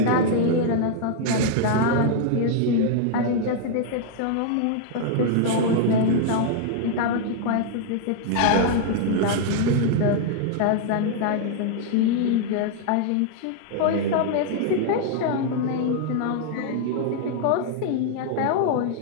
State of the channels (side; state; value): both; different; correlation 0.00